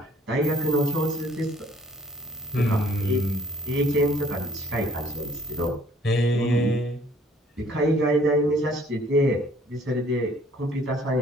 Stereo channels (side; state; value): both; normal; correlation 0.58